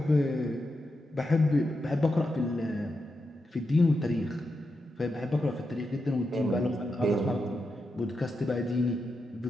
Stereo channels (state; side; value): normal; both; correlation 0.87